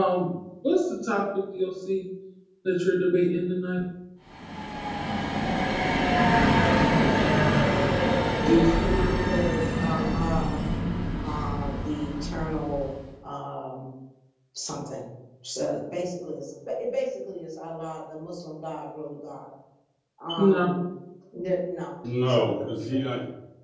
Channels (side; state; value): both; identical; correlation 1.00